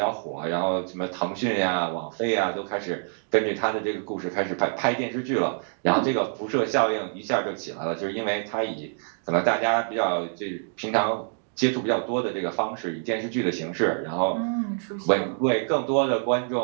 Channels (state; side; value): silent; left; digital silence